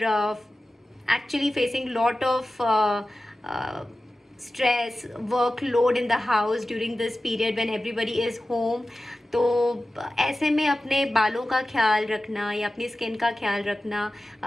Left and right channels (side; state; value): both; normal; correlation 0.95